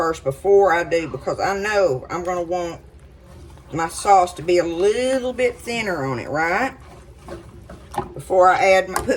before I do, because I know I'm going to want my sauce to be a little bit thinner on it, right? Before I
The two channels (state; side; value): identical; both; correlation 1.00